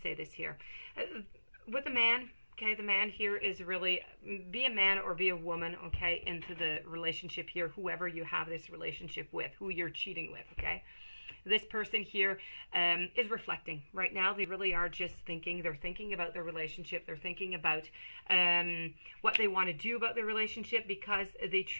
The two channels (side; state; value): both; inverted; correlation -1.00